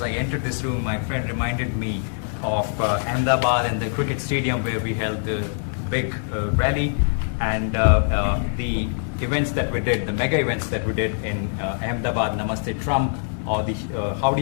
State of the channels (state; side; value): silent; right; digital silence